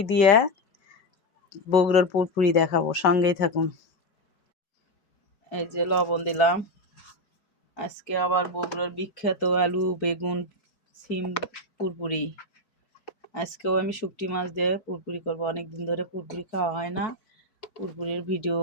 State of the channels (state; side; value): late; right; 5.2 ms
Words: দিয়ে বগুড়ার পুরপুরি দেখাবো, সঙ্গেই থাকুন। এই যে লবণ দিলাম। আজকে আবার বগুড়ার বিখ্যাত আলু বেগুন সিম পুরপুরি। আজকেও আমি শুটকি মাছ দিয়ে পুরপুরি করবো। অনেকদিন ধরে পুরপুরি খাওয়া হয় না, পুরপুরির ভিডিও